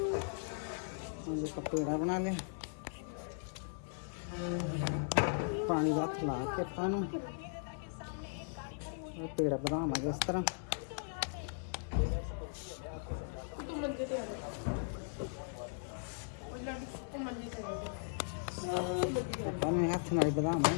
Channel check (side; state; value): right; silent; 52 dB below the other